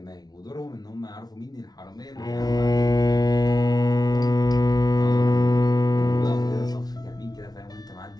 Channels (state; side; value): late; right; 0.19 ms